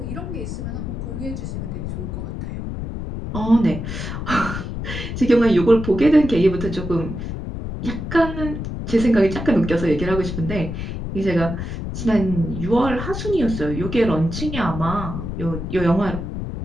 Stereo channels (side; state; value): left; noise; rumble, 6 dB below the sound